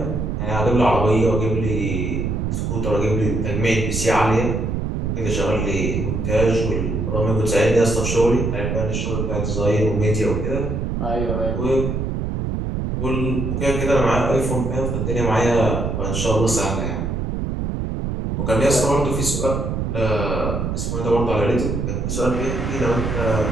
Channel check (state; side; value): noise; right; rumble, 1 dB below the sound